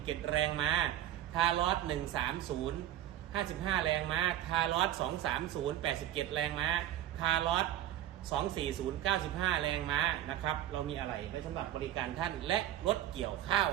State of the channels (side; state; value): left; quieter; 12.1 dB